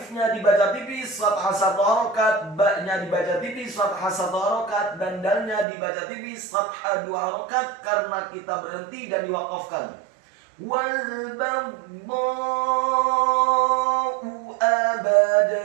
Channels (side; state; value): left; drops out; at 5.7 s